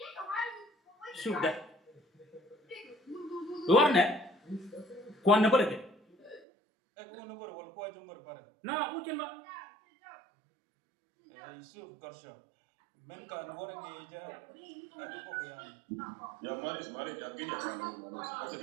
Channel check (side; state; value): left; drops out; at 6.4 s